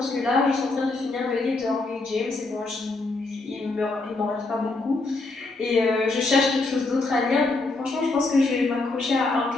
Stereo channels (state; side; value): quieter; right; 3.3 dB